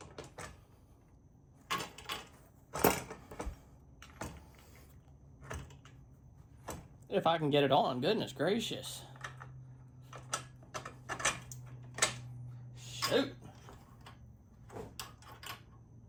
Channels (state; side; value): identical; both; correlation 1.00